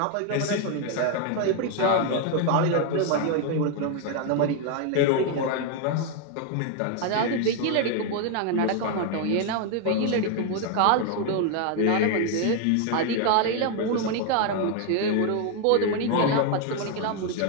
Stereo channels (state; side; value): different; both; correlation 0.01